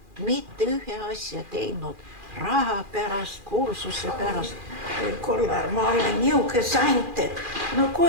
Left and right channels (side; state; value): left; late; 2.4 ms